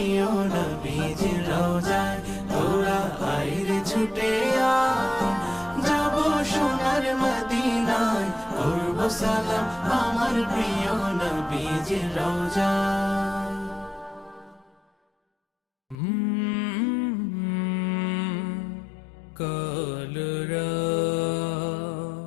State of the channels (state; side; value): drops out; right; at 16.0 s